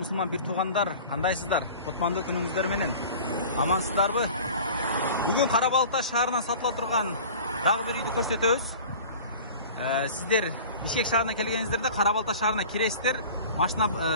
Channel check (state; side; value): inverted; both; correlation -0.41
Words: бир туугандар, кандайсыздар? Кутмандуу күнүңүздөр менен. Амансыздарбы? Бүгүн Карабалта шаарына сатыла турган дагы бир үйдү көрсөтөбүз. Сиздер Бишкек шаарына келгениңиздерде Карабалта шаарына киресиздер, машина